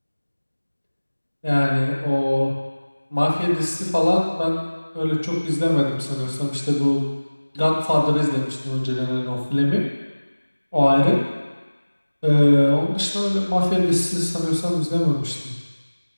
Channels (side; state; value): both; inverted; correlation -1.00